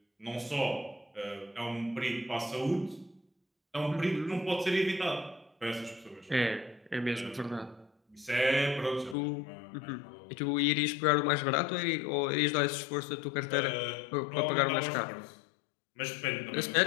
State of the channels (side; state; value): right; drops out; at 9.2 s